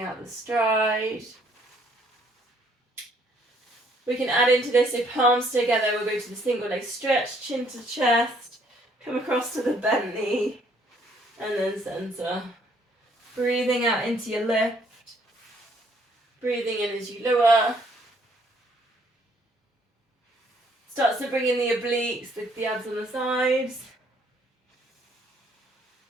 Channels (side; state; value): both; normal; correlation 0.65